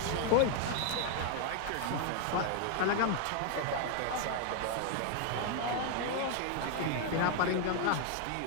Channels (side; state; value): both; different; correlation 0.00